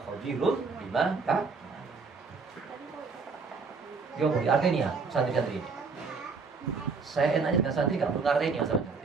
khabirun bima ta'malun. Yo, artinya santri-santri ini. Saya enaknya dengan santri nggak perlu ngartinya sama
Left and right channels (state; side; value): quieter; left; 4.7 dB